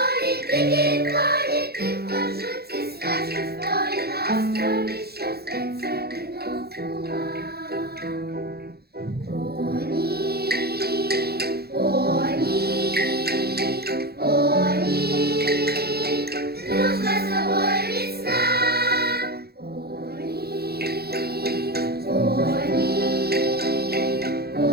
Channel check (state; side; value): late; left; 0.46 ms